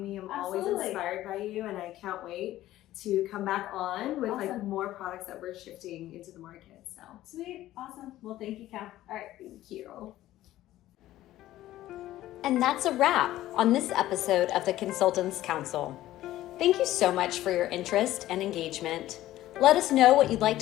me. I'm Absolutely. always inspired by you, and I can't wait to come back on with Awesome. more products that we're shifting into the market. So sweet. Awesome. Well, thank you, Cal. All right. thank you. And that's a wrap on this episode of the Consultants Counsel. Thank you so much for your interest and engagement. Let us know what you'd like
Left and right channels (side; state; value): right; quieter; 14.7 dB